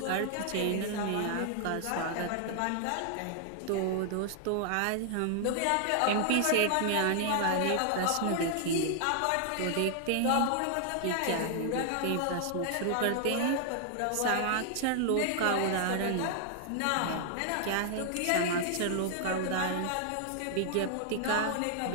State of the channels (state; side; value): different; both; correlation 0.00